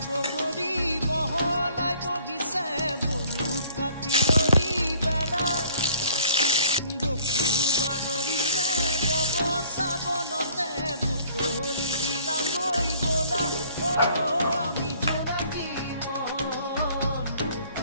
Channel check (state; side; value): inverted; both; correlation -0.56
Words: বগৰী বহলাই বহিছে বলু কাটিয়ৰী বেলা বকুল বাগৰিছে বব চাবনতে বুটলি দিলাগৈ বলা